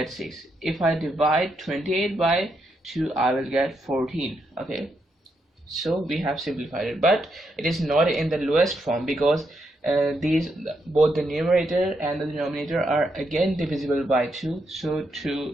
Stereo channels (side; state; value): both; normal; correlation 0.80